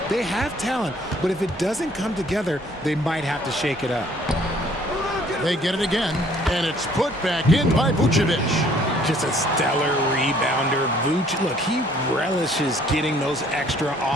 They have talent, but if it doesn't come together, they might have to shake it up. They get it again, and it's put back in by Vucevic. Just a stellar rebounder. Vuce, look, he relishes getting those extra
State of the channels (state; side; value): normal; both; correlation 0.60